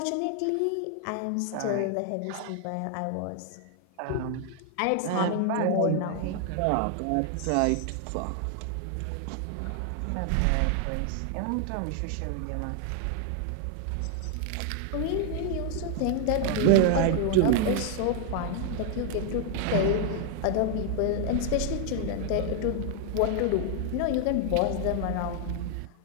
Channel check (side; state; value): both; different; correlation 0.00